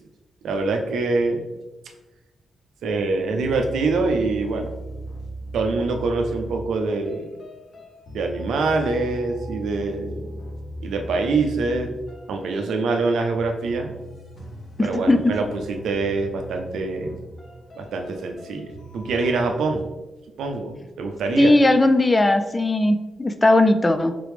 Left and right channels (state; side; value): normal; both; correlation 0.84